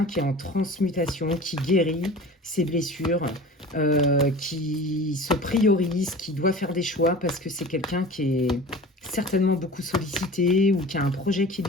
qui est en transmutation, qui guérit ses blessures, qui se priorise, qui doit faire des choix parce que c'est quelqu'un qui est certainement beaucoup sollicité ou qui a un projet qui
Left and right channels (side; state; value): both; normal; correlation 0.38